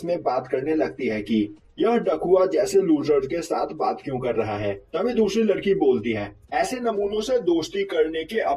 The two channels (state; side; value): identical; both; correlation 1.00